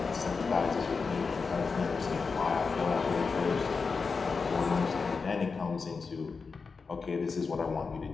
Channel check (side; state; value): right; quieter; 4.8 dB